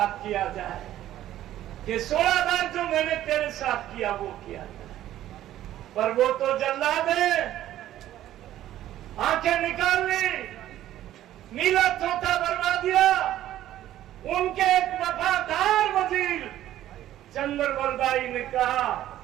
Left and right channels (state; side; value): quieter; left; 13.0 dB